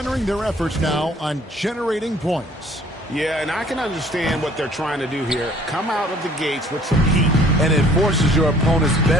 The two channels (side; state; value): both; normal; correlation 0.56